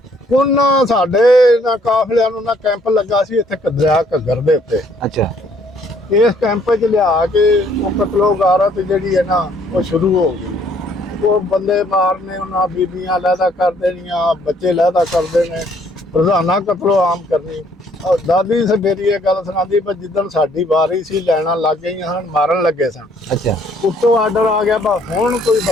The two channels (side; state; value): both; normal; correlation 0.64